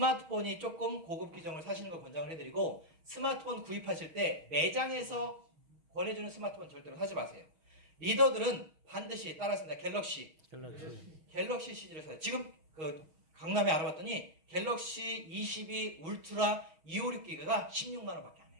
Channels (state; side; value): late; left; 6.3 ms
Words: 조금 고급 기종을 사시는 걸 권장을 해드리고, 스마트폰 구입하실 때 매장에서 권해주는 스마트폰 절대로 사지 마세요. 리더들은 반드시 따라했습니다. 갤럭시 시리즈를 사요. 지금 그 강남에 알아봤더니 갤럭시 22 울트라 256기가가 16만 원밖에 안